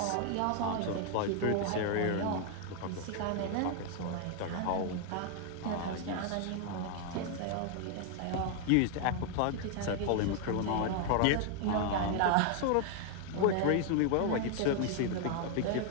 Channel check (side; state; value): both; different; correlation 0.00